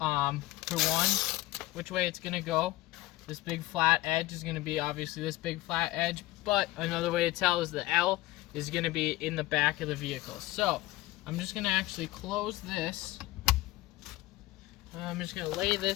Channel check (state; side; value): quieter; right; 18.0 dB